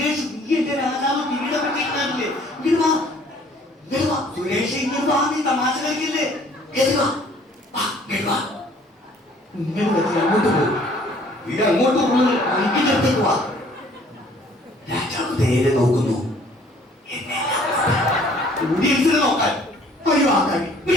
നീ എന്റെ രാജാവ് കിരീടം പറ്റിയിട്ടില്ലേ? ഇങ്ങോട്ട് വാ, ഇങ്ങോട്ട് വാ സുരേഷ്, ഇങ്ങോട്ട് വാ. നീ തമാശ കളിക്കില്ലേ? അങ്ങോട്ട് പോകും, ഇത് അങ്ങോട്ട് പോകുന്നത് അടുത്തേക്ക് വാ. രാജാവ് നേരെ നോക്കുന്നു, ഓഡിയൻസിനെ നോക്കാൻ ഒഴിവാക്കാൻ.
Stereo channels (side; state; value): both; normal; correlation 0.57